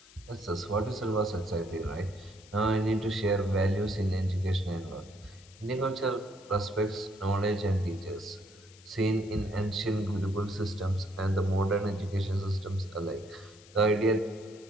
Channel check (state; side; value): noise; left; hiss, 23 dB below the sound